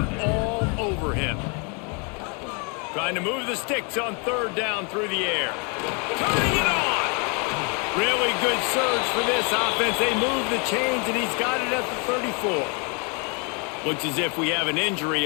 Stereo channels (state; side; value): quieter; right; 34.8 dB